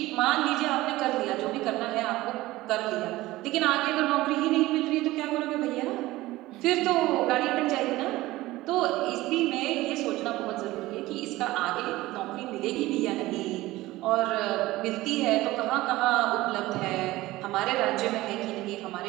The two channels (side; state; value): left; quieter; 18.0 dB